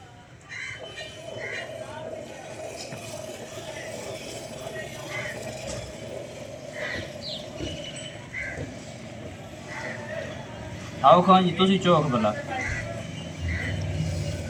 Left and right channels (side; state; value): both; identical; correlation 1.00